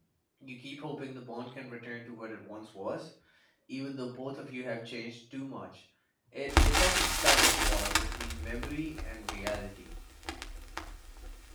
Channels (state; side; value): identical; both; correlation 1.00